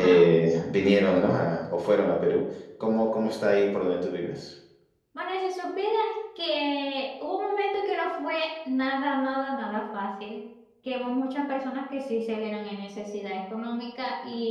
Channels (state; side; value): identical; both; correlation 1.00